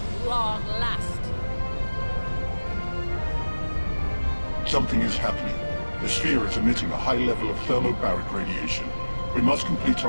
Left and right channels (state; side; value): inverted; both; correlation -1.00